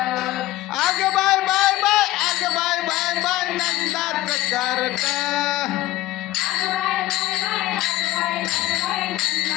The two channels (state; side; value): quieter; right; 16.4 dB